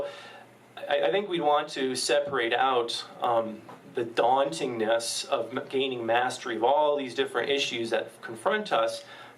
I think we'd want to separate out the dauntingness of gaining mastery of all these different issues that confront us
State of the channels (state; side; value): identical; both; correlation 1.00